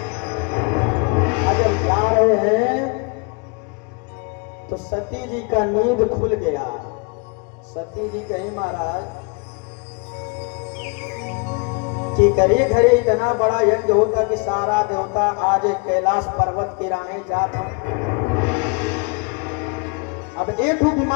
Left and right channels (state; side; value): quieter; right; 33.1 dB